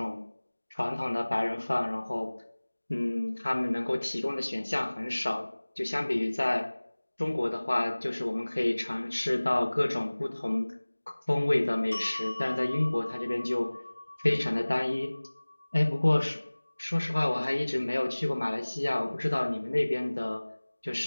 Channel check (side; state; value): both; inverted; correlation -1.00